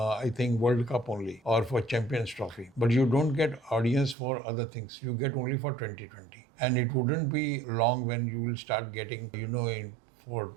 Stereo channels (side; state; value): left; drops out; at 4.2 s